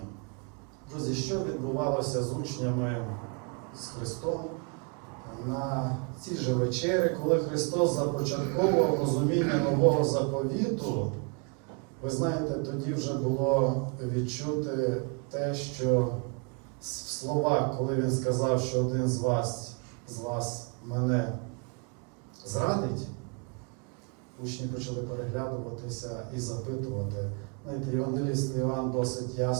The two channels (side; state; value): left; quieter; 35.9 dB